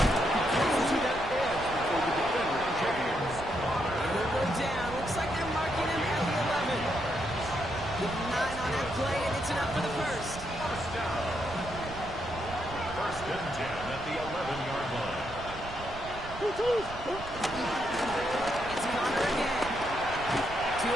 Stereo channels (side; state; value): right; noise; rumble, 13 dB below the sound